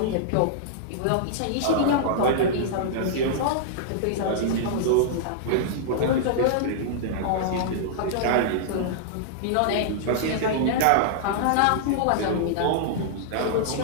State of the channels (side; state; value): both; different; correlation -0.02